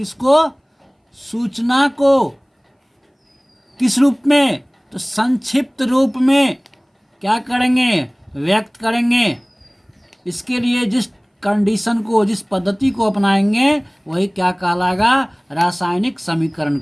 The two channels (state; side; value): identical; both; correlation 1.00